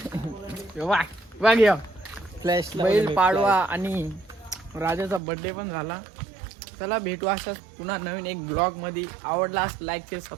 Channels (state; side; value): drops out; left; at 5.2 s